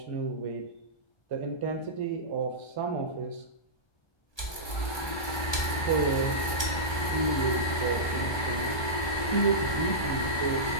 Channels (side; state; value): right; late; 1.2 ms